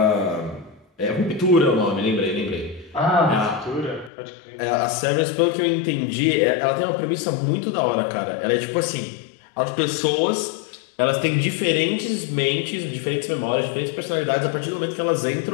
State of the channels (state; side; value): drops out; right; at 4.1 s